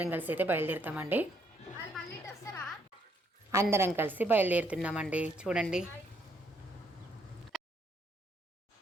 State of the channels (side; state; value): both; normal; correlation 0.71